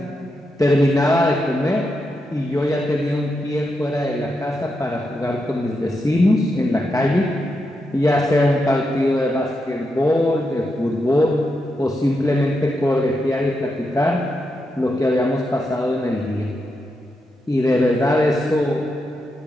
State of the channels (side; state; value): both; normal; correlation 0.85